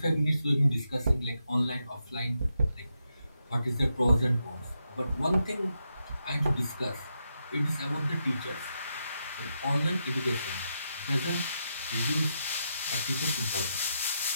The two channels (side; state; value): both; inverted; correlation -0.83